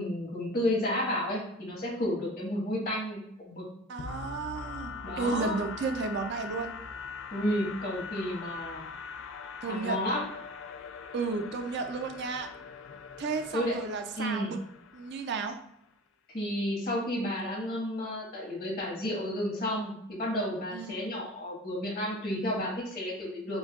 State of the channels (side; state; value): both; normal; correlation 0.38